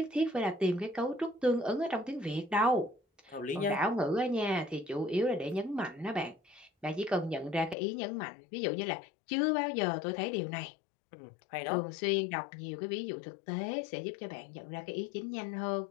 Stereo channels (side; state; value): right; drops out; at 7.8 s